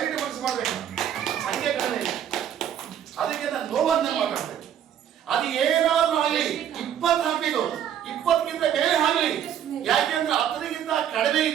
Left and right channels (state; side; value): quieter; left; 9.7 dB